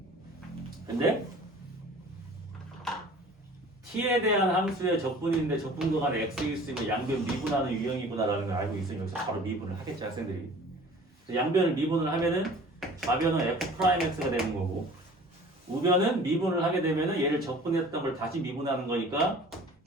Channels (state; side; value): normal; both; correlation 0.46